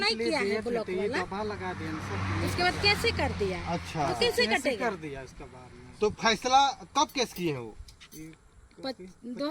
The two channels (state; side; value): identical; both; correlation 1.00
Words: किया है ब्लॉक ये वाला। दबा लगा दिया सब। उसके बाद कैसे कर दिया? अच्छा, तो कैसे कैसे कटेगा? कर दिया इसका बाद में? तो फैसला कब केस किए हैं वो?